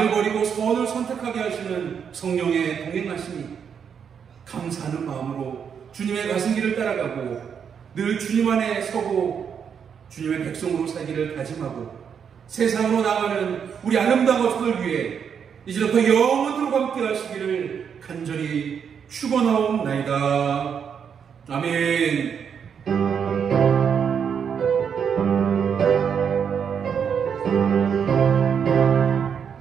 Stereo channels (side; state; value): left; quieter; 7.3 dB